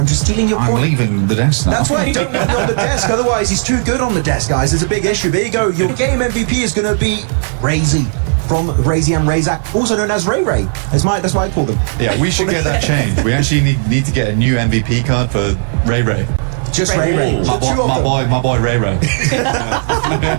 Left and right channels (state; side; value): silent; left; digital silence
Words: I'm just stealing your point. I'm leaving the desk now. That's why you don't want me on the desk. Otherwise, he's too good on the desk, guys. There's a big issue. There you go. Your game MVP is going to be Razy from Razy and Razak, also known as Ray Ray. That's why I call them. Yeah, we should get that changed. We actually need to get a new MVP card for Ray Ray. Just Ray Ray. My boy Ray Ray.